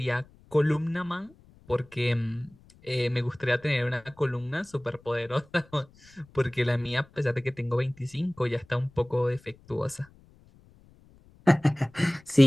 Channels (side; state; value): left; noise; rumble, 27 dB below the sound